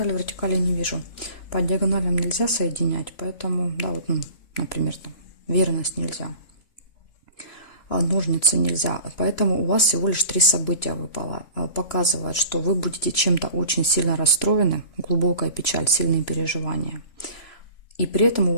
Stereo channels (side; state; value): right; late; 2.9 ms